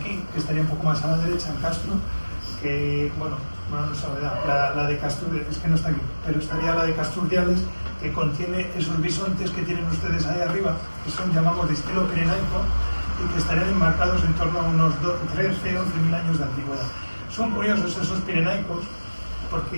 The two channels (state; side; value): inverted; both; correlation -1.00